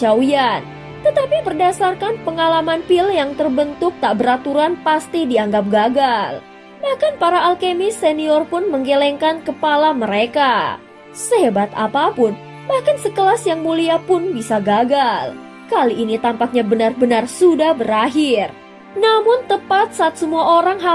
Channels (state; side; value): identical; both; correlation 1.00